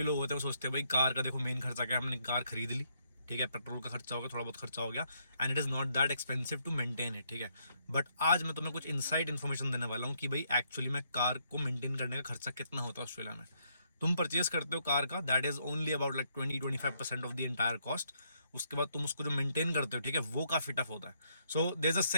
लोग होते हैं वो सोचते हैं भाई कार का देखो मेन खर्चा क्या है, हमने कार खरीद ली, ठीक है, पेट्रोल का खर्चा हो गया, थोड़ा बहुत खर्चा हो गया, and it is not that expensive to maintain it. ठीक है, बट आज मैं तुम्हें कुछ इनसाइड इन्फॉर्मेशन देने वाला हूँ कि भाई एक्चुअली में कार को मेंटेन करने का खर्चा कितना होता है ऑस्ट्रेलिया में। तुम परचेज करते हो कार का, that is only about like 20-25% of the entire cost. उसके बाद तुम उसको जो मेंटेन करते हो, ठीक है, वो काफ़ी टफ होता है। So there is a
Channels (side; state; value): both; inverted; correlation -0.73